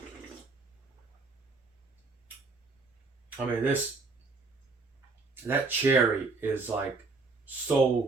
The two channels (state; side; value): quieter; left; 3.9 dB